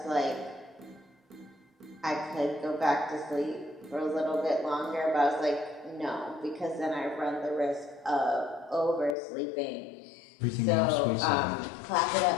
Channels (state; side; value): drops out; right; at 9.2 s